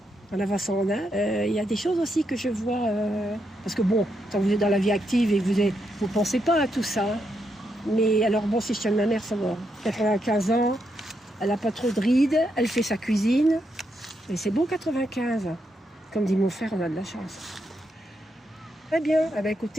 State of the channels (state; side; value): normal; both; correlation 0.81